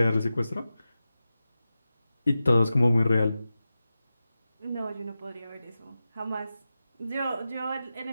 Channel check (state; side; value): inverted; both; correlation -0.93